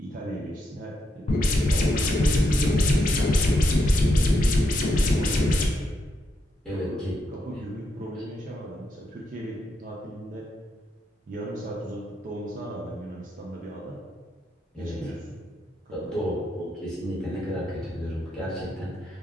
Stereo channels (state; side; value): normal; both; correlation 0.81